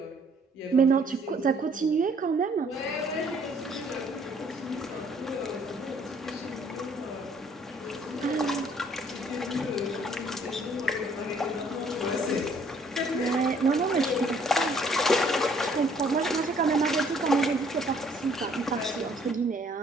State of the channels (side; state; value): both; normal; correlation 0.62